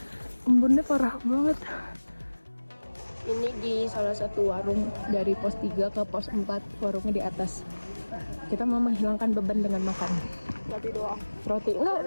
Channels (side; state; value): both; inverted; correlation -1.00